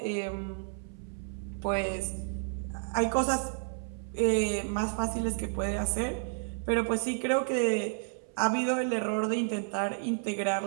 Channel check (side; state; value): left; silent; 57 dB below the other